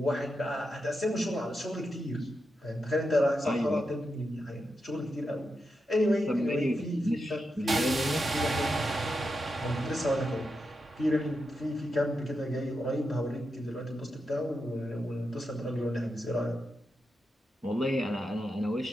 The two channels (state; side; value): normal; both; correlation 0.87